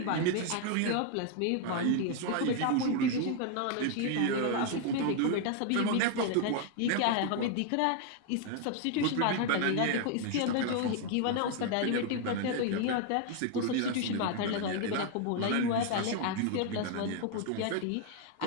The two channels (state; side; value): different; both; correlation 0.00